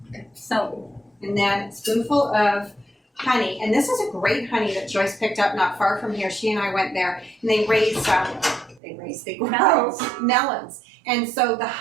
And then a spoonful of honey. And this is a great honey that Joyce picked up not far from here. She and I went there, and they grow melons. And so the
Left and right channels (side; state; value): left; drops out; at 8.8 s